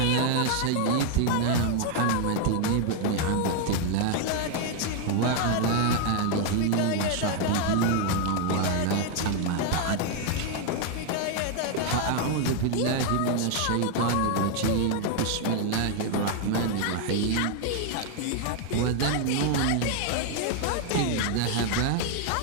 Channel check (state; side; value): different; both; correlation 0.00